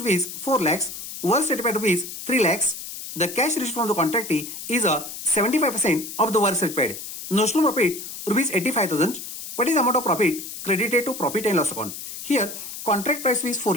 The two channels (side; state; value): left; noise; hiss, 10 dB below the sound